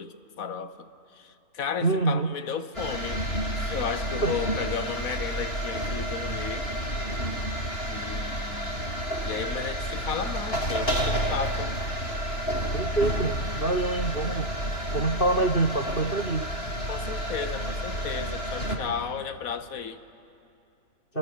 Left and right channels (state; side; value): late; right; 2.9 ms